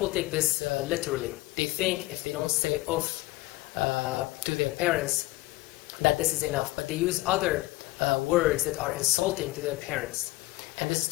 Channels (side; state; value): right; quieter; 20.8 dB